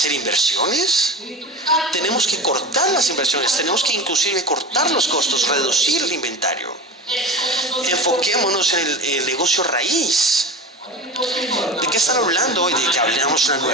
inversiones? Tenemos que cortar las inversiones, tenemos que inclusive cortar los costos, reducir el inventario. Enfoquémonos en el negocio raíz. ¿De qué están hablando hoy? De que hablamos una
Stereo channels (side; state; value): both; normal; correlation 0.30